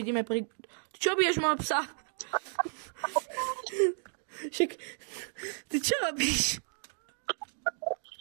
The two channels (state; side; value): silent; left; 56 dB below the other